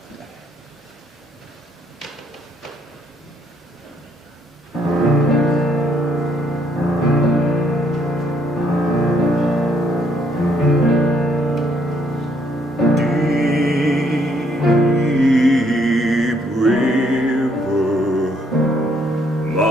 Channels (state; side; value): normal; both; correlation 0.69